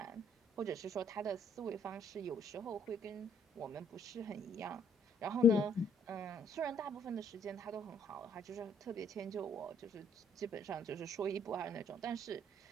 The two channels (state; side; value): normal; both; correlation 0.64